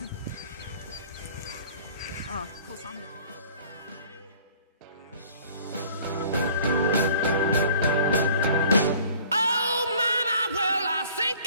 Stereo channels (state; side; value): inverted; both; correlation -0.52